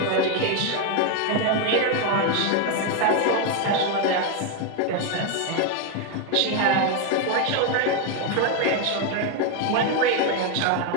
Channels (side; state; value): both; different; correlation 0.01